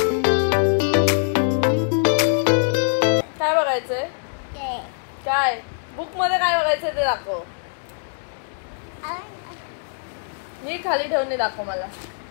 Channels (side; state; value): right; silent; digital silence